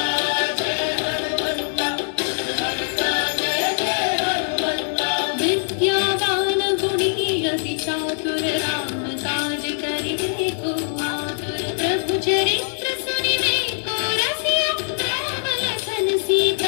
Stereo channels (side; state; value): right; silent; digital silence